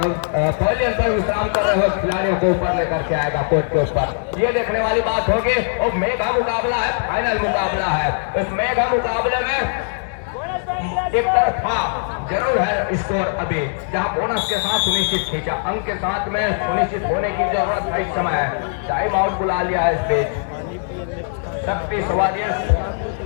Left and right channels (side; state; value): right; silent; digital silence